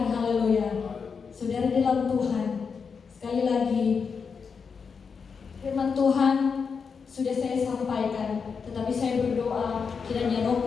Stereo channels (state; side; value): quieter; right; 5.7 dB